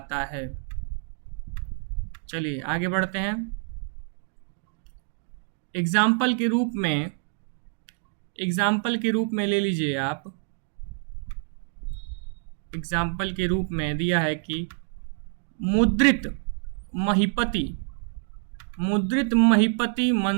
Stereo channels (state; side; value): silent; left; 60 dB below the other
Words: है। चलिए आगे बढ़ते हैं। एग्जाम्पल के रूप में ले लीजिए आप। एग्जाम्पल के रूप में दिया है कि मुद्रित